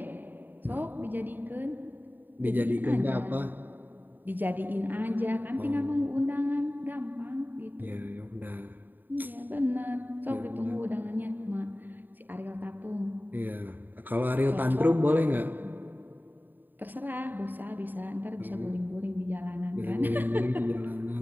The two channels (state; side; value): late; left; 0.090 ms